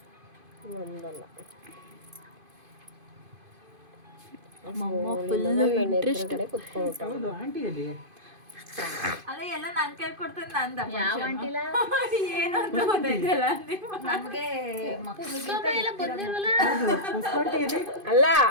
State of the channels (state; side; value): late; left; 2.5 ms